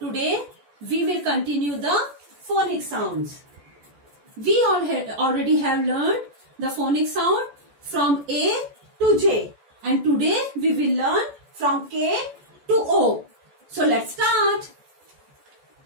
we will continue the phonic sounds. We already have learned the phonic sound from A to J and today we will learn from K to O. So let's start.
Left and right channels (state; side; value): late; left; 14 ms